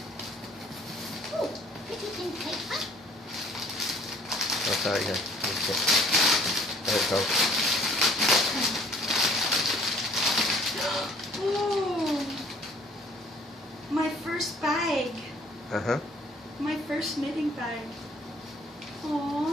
Oh, pretty pink paper. Oh, sorry, yeah. Okay. There it goes. Oh, my first bag. Uh-huh. My first knitting bag.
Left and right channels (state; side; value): normal; both; correlation 0.56